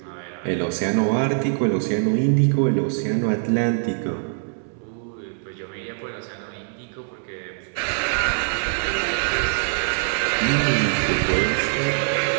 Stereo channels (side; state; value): left; silent; 63 dB below the other